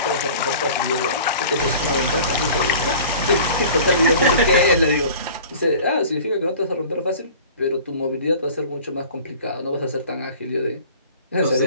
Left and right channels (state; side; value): inverted; both; correlation -0.44